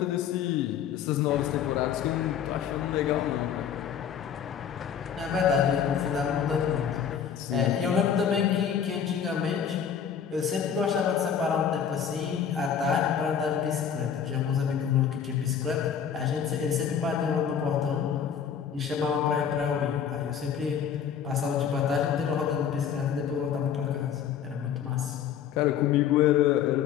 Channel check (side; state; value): right; quieter; 8.1 dB